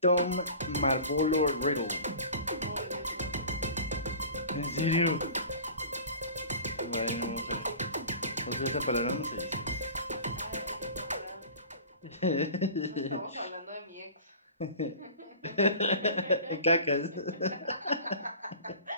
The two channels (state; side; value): inverted; both; correlation -0.40